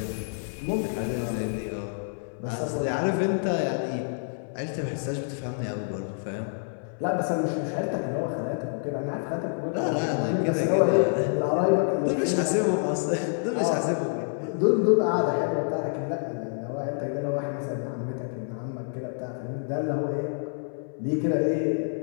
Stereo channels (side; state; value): right; silent; 60 dB below the other